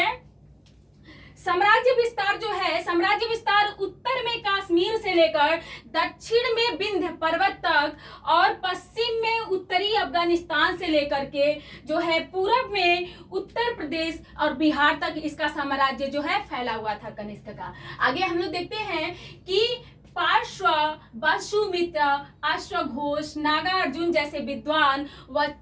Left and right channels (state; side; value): identical; both; correlation 1.00